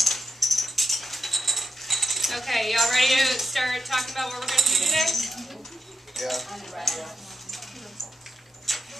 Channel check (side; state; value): both; normal; correlation 0.86